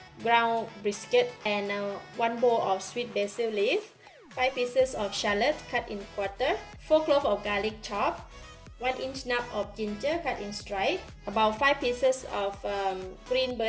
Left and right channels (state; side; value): identical; both; correlation 1.00